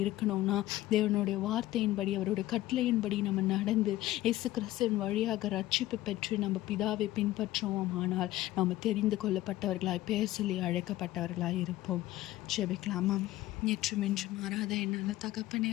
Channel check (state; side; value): quieter; right; 15.9 dB